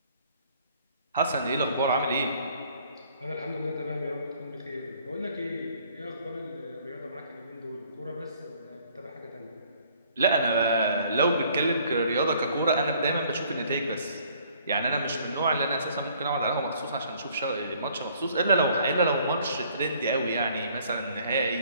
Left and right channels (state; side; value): inverted; both; correlation -0.59